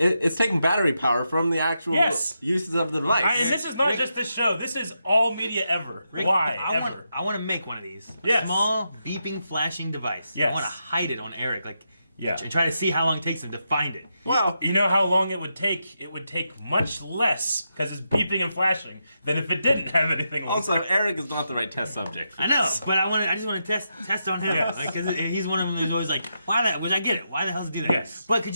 taking battery power from the actual Yes. uses of the device. And this is not Rick- just this show. This is all media ever. Rick, Why I ever? want to make one of these. A Yes. small beeping flashing device. Yes. I want to hide it on Eric, like, Yeah. and try to see how long it takes him to find it. Well, You know how long it would take? It would take much less because it's beeping and flashing than if it didn't have anything on also, it. Eric is not the right test subject. For I know, this. but I just want to test on him, Yes. like, because he's one of them who's always like, which I get it. Why the hell does he do that? Yes. But could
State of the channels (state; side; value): inverted; both; correlation -0.84